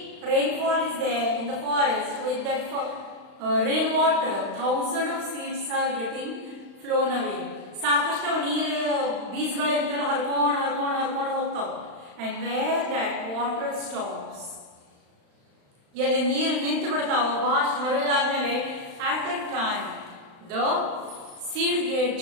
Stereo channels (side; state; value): left; late; 35 ms